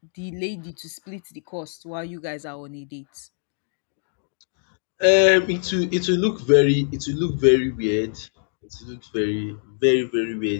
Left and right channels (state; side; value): silent; right; digital silence